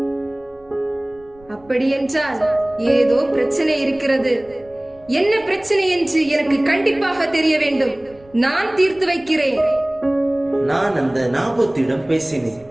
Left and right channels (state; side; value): noise; right; rumble, 28 dB below the sound